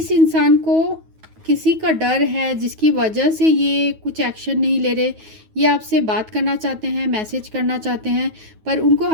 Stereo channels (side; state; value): left; late; 9.3 ms